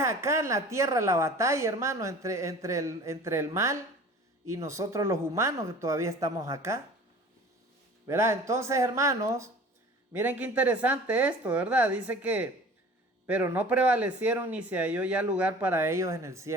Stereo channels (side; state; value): both; normal; correlation 0.44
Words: en la tierra la batalla, hermano, entre el mal y nosotros los humanos que todavía estamos acá. ¿Verdad? Entonces, hermanos, miren qué interesante esto, ¿verdad? Dice que, pero no prevalecieron ni se halló ya lugar para ellos en el